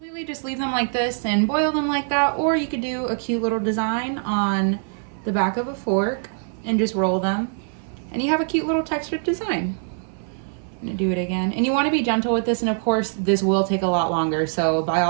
Just leave them like this and boil them like that, or you could do a cute little design on the back of a fork and just roll them, and you have a cute little textured design. I'm gonna do it again, and you want to be gentle with this, and of course this will take a lot longer, so by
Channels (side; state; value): left; silent; 60 dB below the other